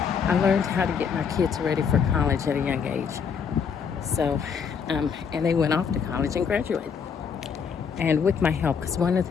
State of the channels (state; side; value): quieter; right; 6.5 dB